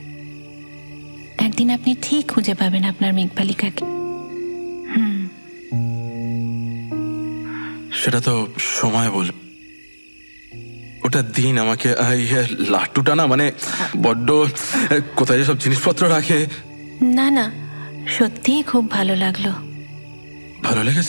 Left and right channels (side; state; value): both; inverted; correlation -1.00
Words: একদিন আপনি ঠিক খুঁজে পাবেন আপনার মেঘবালিকাকে। সেটা তো সময় বল। ওটা দিন আমাকে। লাট্টুটা না মানে বড্ড, কোথায় সব জিনিসপত্র রাখে। না না, সত্যিই খুব ভালো লাগলো। ভালো